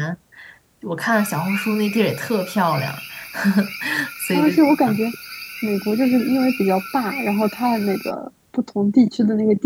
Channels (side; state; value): both; identical; correlation 1.00